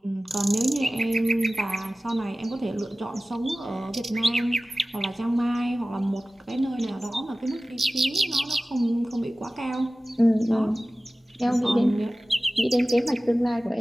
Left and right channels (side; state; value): both; normal; correlation 0.97